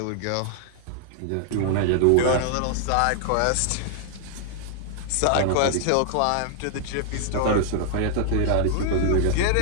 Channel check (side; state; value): both; different; correlation -0.01